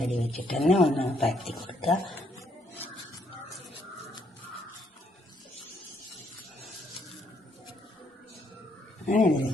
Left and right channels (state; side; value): normal; both; correlation 0.71